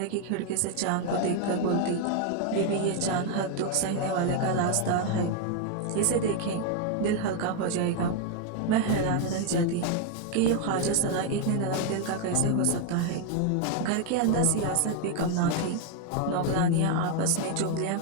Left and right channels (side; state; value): both; different; correlation 0.00